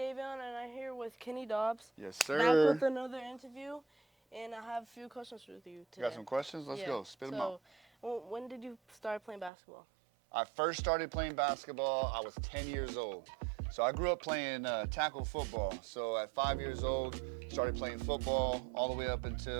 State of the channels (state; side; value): drops out; left; at 9.5 s